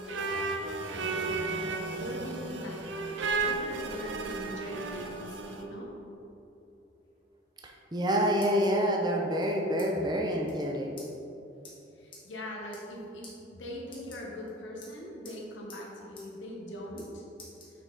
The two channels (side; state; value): both; normal; correlation 0.33